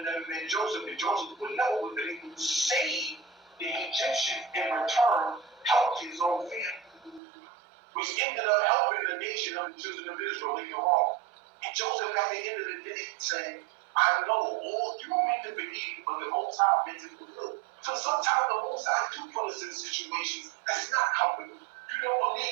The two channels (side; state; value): left; drops out; at 7.2 s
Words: never been Joseph, and Joseph would never have been able to save the Egyptians in return, help his own family, which ended up helping the nation of the children of Israel later on. And Joseph, at the end of the day, said, I know all you meant to believe, but the Most High meant to fulfill. So sometimes the Most High do put us in situations that's not comfortable. You don't